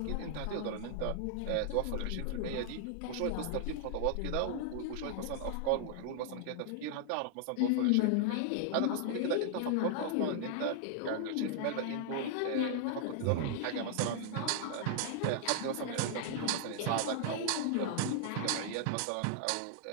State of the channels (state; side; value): different; both; correlation -0.01